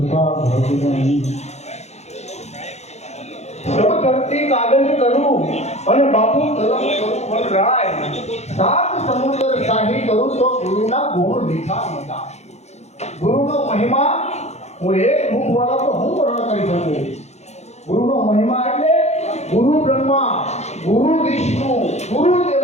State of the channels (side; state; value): right; late; 0.32 ms